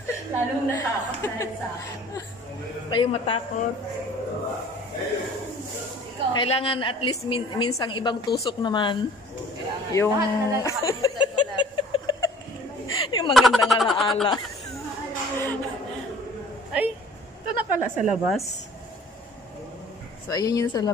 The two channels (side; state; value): both; normal; correlation 0.51